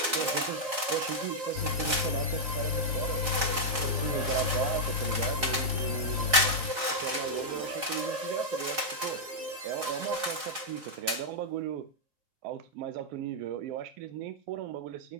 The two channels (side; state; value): left; late; 4.3 ms